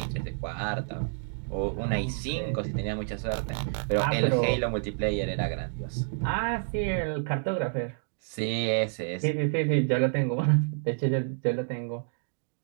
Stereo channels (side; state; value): left; silent; digital silence